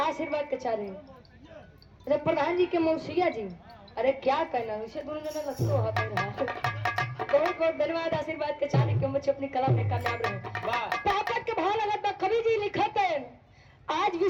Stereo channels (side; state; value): both; identical; correlation 1.00